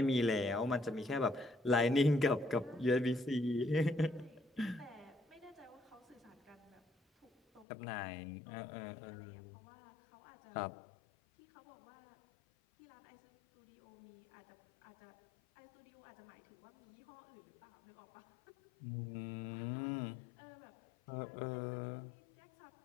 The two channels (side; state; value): right; drops out; at 7.7 s